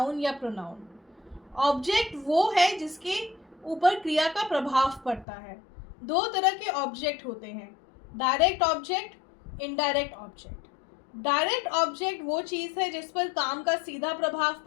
या प्रोनाउन। ऑब्जेक्ट वो है जिसके ऊपर क्रिया का प्रभाव पड़ता है। दो तरह के ऑब्जेक्ट होते हैं, direct object, indirect object. Direct object वो चीज़ है जिस पर काम का सीधा प्रभाव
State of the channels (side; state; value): right; drops out; at 5.2 s